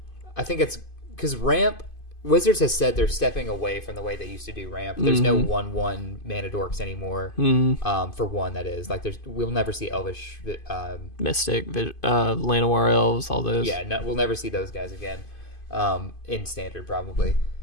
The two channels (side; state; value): right; late; 2.5 ms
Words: I think it's... Because ramp... Wizards has said they're stepping away from the way they used to do ramp. There's no 1/1 mana dorks anymore. For one, that is. Like, we'll never see Elvish... Mystic, Llanowar Elves, all those. Yeah, we'll never see those guys again. In Standard, probably.